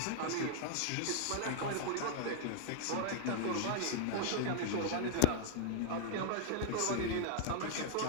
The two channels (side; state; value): both; different; correlation 0.00